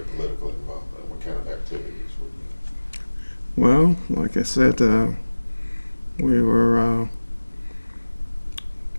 political involvement? What kind of activities were you? Well, like I said, we were,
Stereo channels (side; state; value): both; inverted; correlation -1.00